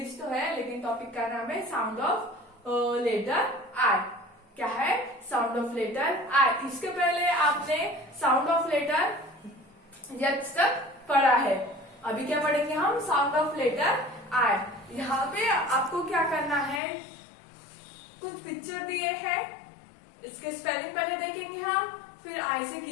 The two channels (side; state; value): right; drops out; at 16.8 s